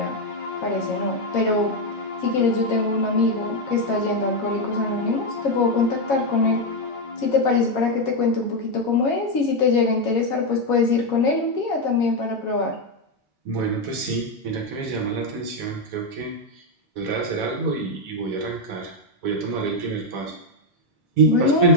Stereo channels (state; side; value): normal; both; correlation 0.05